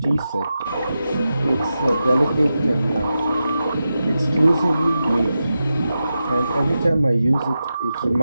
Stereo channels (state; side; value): inverted; both; correlation -0.90